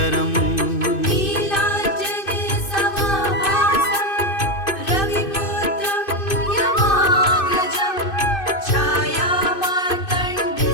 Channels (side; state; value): right; late; 2.5 ms